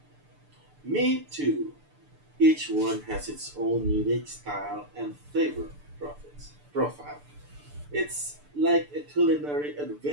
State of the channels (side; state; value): left; late; 6.8 ms